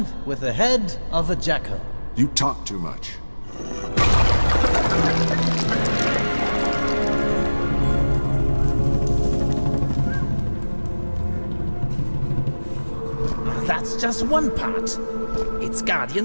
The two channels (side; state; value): both; inverted; correlation -1.00